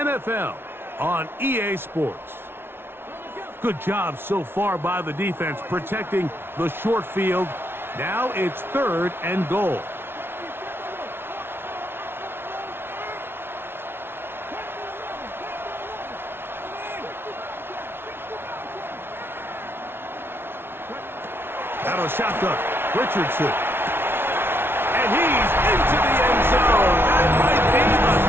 on EA Sports. Good job so far by the defense protecting the short field. Now it's 3rd and goal. Out of shotgun, Richardson. And he's into the end zone. That might be the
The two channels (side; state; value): left; late; 0.11 ms